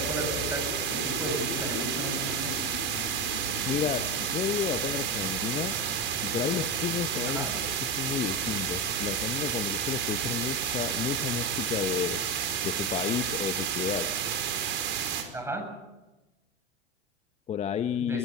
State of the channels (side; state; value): both; normal; correlation 0.17